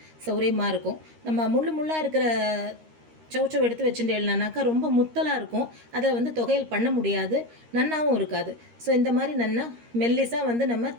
சௌரியமாக இருக்கும். நம்ம முள்ளாக இருக்கிற சௌச்சௌ எடுத்து வச்சுட்டேன்னாக்கா ரொம்ப முத்தலாக இருக்கும். அதில் வந்து தொகையல் பண்ண முடியாது, நன்னாவும் இருக்காது. ஸோ இந்த மாதிரி நன்னா மெல்லிஸாக வந்து நம்ம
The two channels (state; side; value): late; left; 13 ms